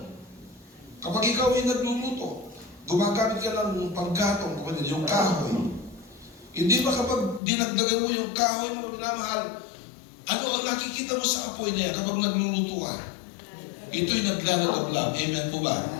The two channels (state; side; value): drops out; right; at 7.4 s